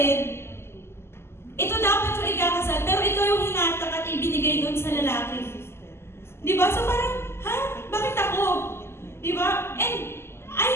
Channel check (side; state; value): right; late; 0.12 ms